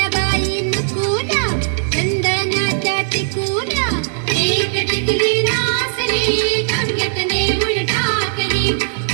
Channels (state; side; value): silent; left; digital silence